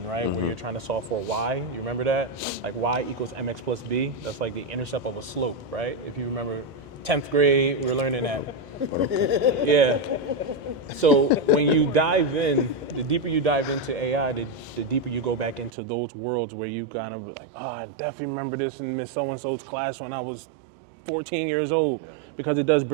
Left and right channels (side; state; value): left; drops out; at 15.7 s